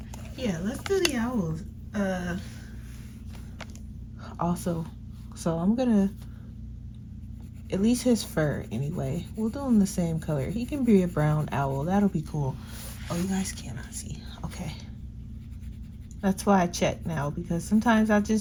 Yeah, let's do the owls. Also, so I'm gonna, at least his fur anyway, we'll do him the same color. He can be a brown owl, that'll be cool. Oh, you guys cannot see, okay. That's why I check now, because sometimes I'll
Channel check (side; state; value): both; identical; correlation 1.00